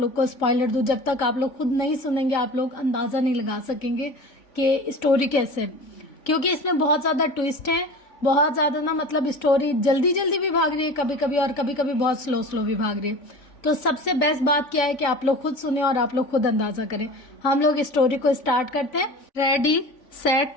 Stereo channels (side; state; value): right; late; 3.5 ms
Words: को स्पॉइलर दूं, जब तक आप लोग खुद नहीं सुनेंगे आप लोग अंदाजा नहीं लगा सकेंगे कि स्टोरी कैसे है, क्योंकि इसमें बहुत ज्यादा ट्विस्ट है, बहुत ज्यादा ना, मतलब स्टोरी जल्दी जल्दी भी भाग रही है कभी कभी, और कभी कभी बहुत स्लो स्लो भी भाग रही है। तो सबसे बेस्ट बात क्या है कि आप लोग खुद सुने और आप लोग खुद अंदाजा करें। हम लोग स्टोरी को स्टार्ट करते हैं। Ready